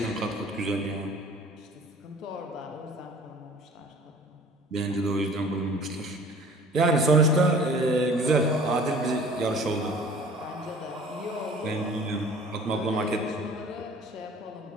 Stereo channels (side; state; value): both; normal; correlation 0.48